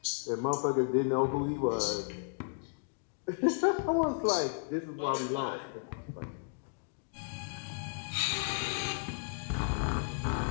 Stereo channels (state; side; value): silent; right; digital silence